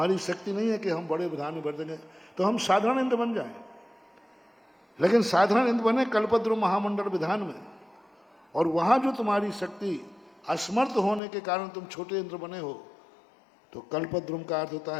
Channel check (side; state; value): right; drops out; at 11.2 s